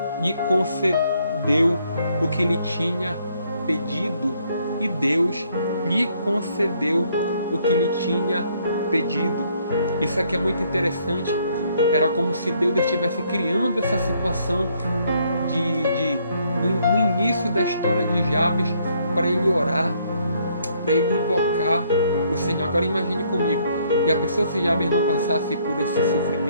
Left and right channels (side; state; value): both; inverted; correlation -0.68